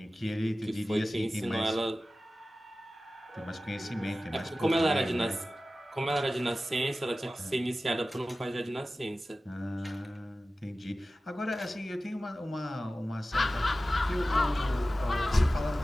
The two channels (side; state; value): both; normal; correlation 0.95